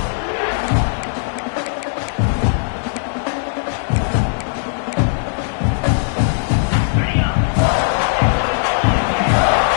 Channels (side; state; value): right; silent; digital silence